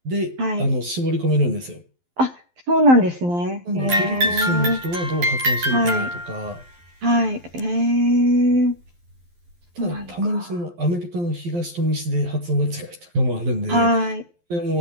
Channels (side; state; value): left; late; 12 ms